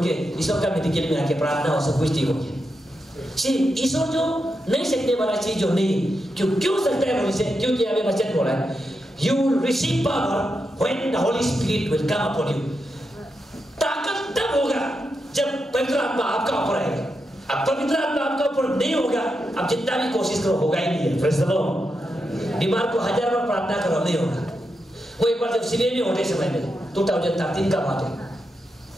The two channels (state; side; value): normal; both; correlation 0.86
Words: के ईश्वर का मेडिकल में आके प्रार्थना हो, सब कुछ ठीक हो गया। ईश्वर जो नहीं सकने वाला चीज जो नहीं, क्यों सकता है बोले, क्योंकि हमें वचन बोला है, you will receive power when the Holy Spirit will come upon you। ताकत तब होगा जब पवित्र आत्मा आपका ऊपर आएगा। अब पवित्र आत्मा आपका ऊपर नहीं होगा, अब जितना भी कोशिश करो होगा ही नहीं है। Praise the Lord. बीमार को 1000 बार प्रार्थना करो, नहीं होगा। वो एक बार जब सिविल में होने समय में 2013 का बात है,